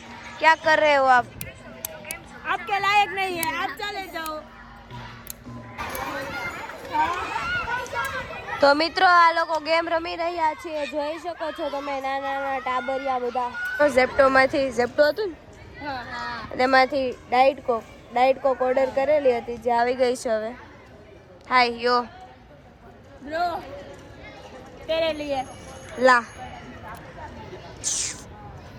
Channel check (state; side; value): identical; both; correlation 1.00